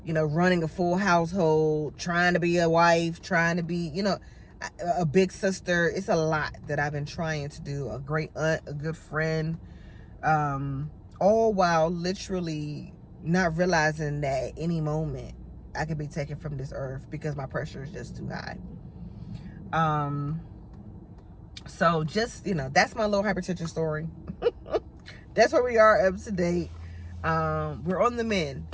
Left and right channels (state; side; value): identical; both; correlation 1.00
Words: running a full household, trying to be a wife, trying to be, a big sister. It's a lot that I've been trying to do, a great aunt, a good friend, all while literally not realizing that at any moment I could be taken from this earth because my pressure is just too high. So just, that's my little hypertension story. That's where we are up to date. We're on the